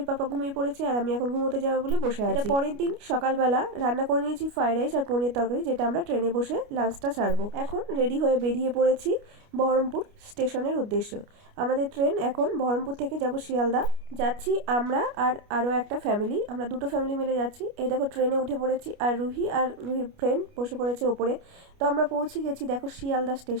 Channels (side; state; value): left; late; 29 ms